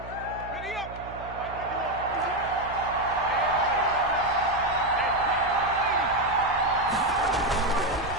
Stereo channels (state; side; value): noise; right; hum, 15 dB below the sound